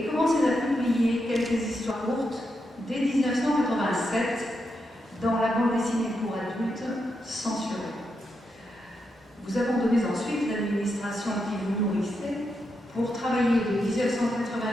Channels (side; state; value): both; normal; correlation 0.84